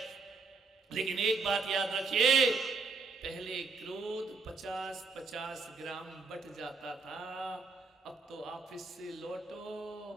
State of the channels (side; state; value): left; quieter; 4.3 dB